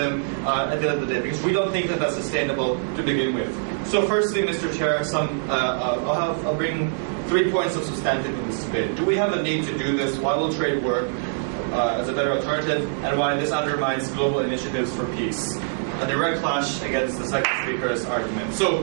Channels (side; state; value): left; silent; digital silence